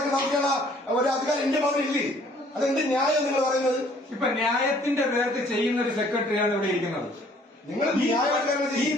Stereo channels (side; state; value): both; normal; correlation 0.59